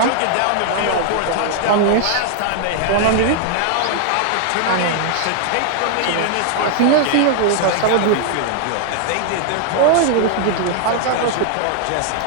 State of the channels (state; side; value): different; both; correlation 0.00